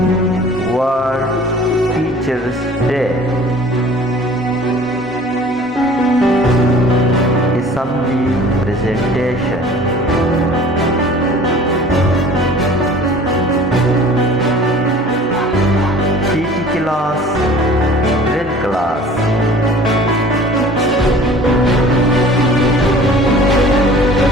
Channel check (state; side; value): normal; both; correlation 0.47